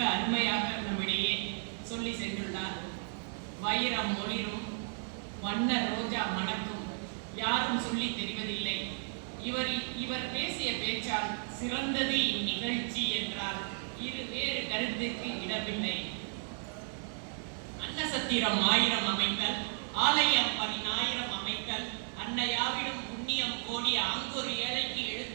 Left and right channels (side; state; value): left; silent; 55 dB below the other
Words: அருமையாக நம்மிடையே சொல்லி சென்றுள்ளார். வைரம் ஒளிரும், வண்ண ரோஜா மணக்கும், யாரும் சொல்லி தெரிவதில்லை. இவர் பேசிய பேச்சால் சிறந்தது இந்நிகழ்ச்சி என்றால் வேறு கருத்துக்கு இடமில்லை. அன்னசத்திரம் 1000 அமைத்தல், ஆலயம் 10,000 அமைத்தல், அன்னையாவிடம் புண்ணியம் கோடி அங்கொரு ஏழைக்கு